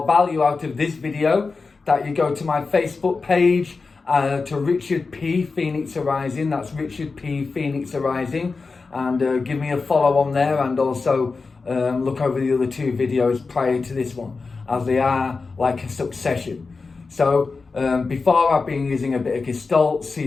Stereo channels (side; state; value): right; quieter; 4.3 dB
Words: value out of this video that you go to my Facebook page to Richard P Phoenix Arising. That's Richard P Phoenix Arising, and give me a follow on there, and also look over the other 2 videos prior to this one, as they are like a succession. So before, I've been using a bit of Gestalt,